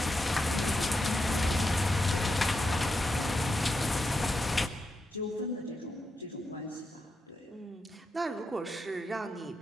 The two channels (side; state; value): both; normal; correlation 0.86